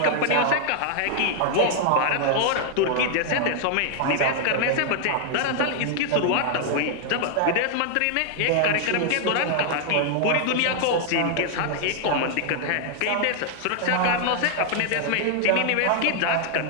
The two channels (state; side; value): different; both; correlation 0.00